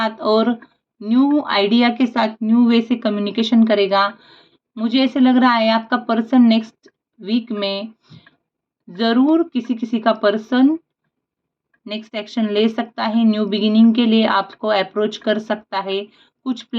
और न्यू आइडिया के साथ न्यू वे से कम्युनिकेशन करेगा। मुझे ऐसे लग रहा है आपका पर्सन नेक्स्ट वीक में ज़रूर किसी किसी का पर्सन नेक्स्ट एक्शन ले सकता है, न्यू बिगिनिंग के लिए आपको अप्रोच कर सकता है, कुछ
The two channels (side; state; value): both; identical; correlation 1.00